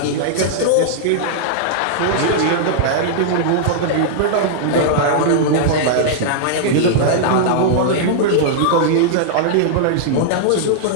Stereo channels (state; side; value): different; both; correlation -0.01